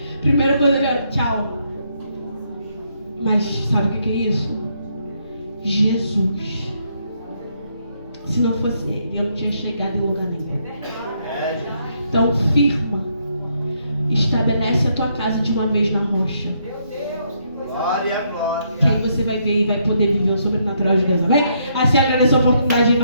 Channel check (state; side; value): inverted; both; correlation -0.74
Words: Primeira coisa, tchau. Mas sabe o que é isso? Jesus. Se não fosse ele, eu não tinha chegado em lugar nenhum. Então firma. Estabelece a tua casa de uma vez na rocha. Glória, glória. Que aí você vai ver e vai poder viver o sobrenatural de Deus. Amém? Assim agradeço a oportunidade em